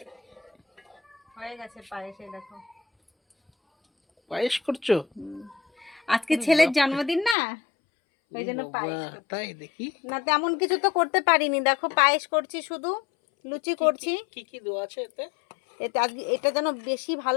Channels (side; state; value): right; drops out; at 7.4 s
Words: হয়ে গেছে পায়েস, এই দেখো। পায়েস করছো? আজকে ছেলের জন্মদিন না, ওই জন্য পায়েস করছি। তাই দেখি না তেমন কিছু তো করতে পারিনি, দেখো পায়েস করছি, শুধু লুচি করছি। কি কি দেওয়া আছে এতে? এটা এটা যেন বেশি